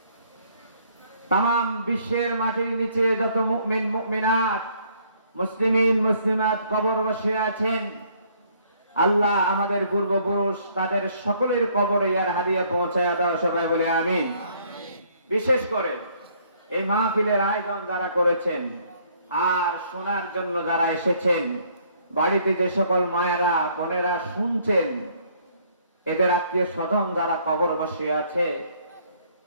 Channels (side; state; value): both; inverted; correlation -0.64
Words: তাম বিশ্বের মাটির নিচে যত মুমিন মুমিনাত, মুসলিমিন মুসলিমাত কবর বসে আছেন, আল্লাহ আমাদের পূর্বপুরুষ তাদের সকলের কবরে ইয়ার হাদিয়া পৌঁছায় দাও। সবাই বলে আমিন। বিশেষ করে এই মাহফিলের আয়োজন যারা করেছেন আর শোনার জন্য যারা এসেছেন, বাড়িতে যে সকল মায়েরা বোনেরা শুনছেন, এদের আত্মীয় স্বজন যারা কবর বসে আছে,